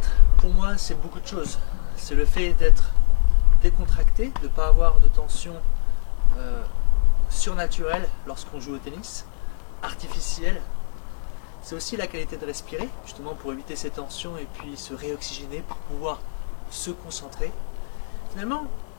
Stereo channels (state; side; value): silent; right; 61 dB below the other